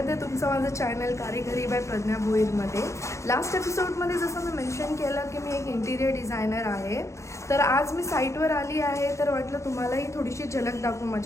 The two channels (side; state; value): right; late; 0.14 ms